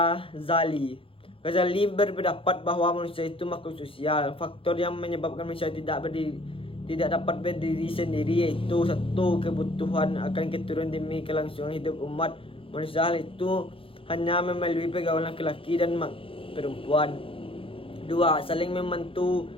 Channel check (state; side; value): late; right; 0.26 ms